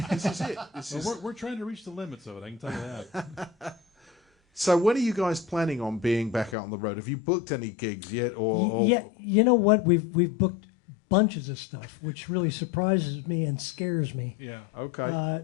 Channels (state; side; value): drops out; right; at 6.6 s